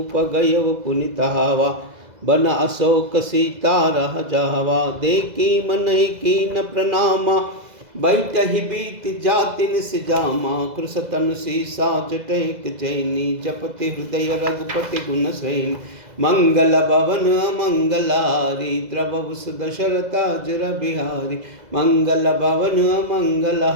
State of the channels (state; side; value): late; left; 2.0 ms